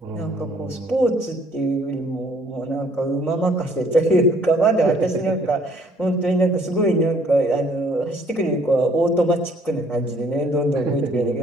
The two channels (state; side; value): normal; both; correlation 0.61